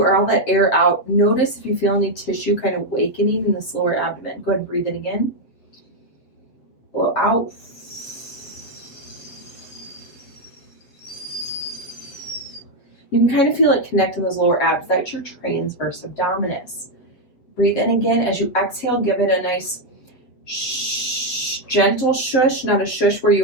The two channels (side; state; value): right; late; 8.0 ms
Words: all that air out, notice if you feel any tissue kind of awakening in this lower abdomen. Go ahead and breathe in again. Blow out. You can kind of feel it connect in those lower abs. That's your transverse abdominis. Breathe in again. As you exhale, give it a nice gentle shush, not a shush where